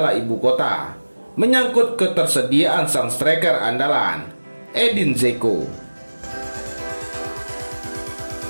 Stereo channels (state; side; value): inverted; both; correlation -1.00